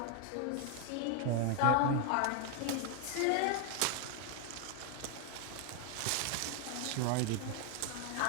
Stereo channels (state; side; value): different; both; correlation 0.00